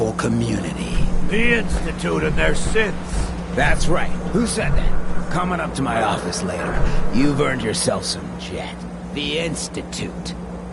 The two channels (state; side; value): identical; both; correlation 1.00